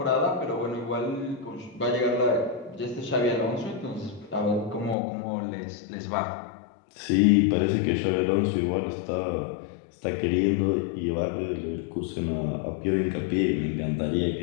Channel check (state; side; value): drops out; right; at 5.0 s